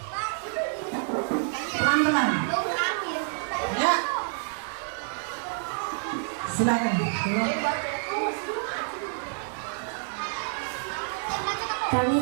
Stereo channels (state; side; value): silent; left; 59 dB below the other